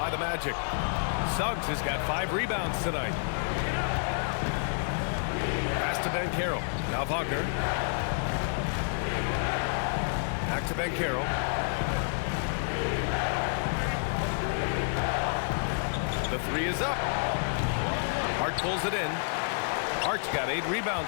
the Magic. Suggs has got 5 rebounds tonight. Pass to Banchero. Now Wagner. Back to Banchero. The 3 is up. Hart pulls it in. Hart's got 8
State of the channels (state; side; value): silent; right; 58 dB below the other